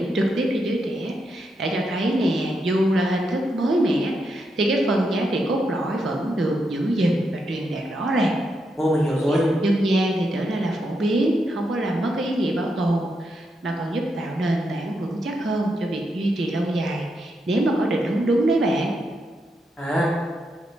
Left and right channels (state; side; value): normal; both; correlation 0.82